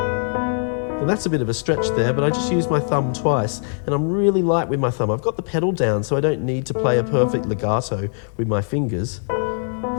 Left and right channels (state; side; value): silent; right; digital silence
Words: That's a bit of a stretch there, but I just used my thumb twice, and I'm really light with my thumb. I've got the pedal down, so I don't need to play a perfect legato with my fingers.